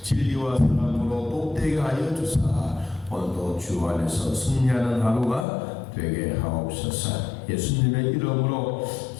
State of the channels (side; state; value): right; drops out; at 5.5 s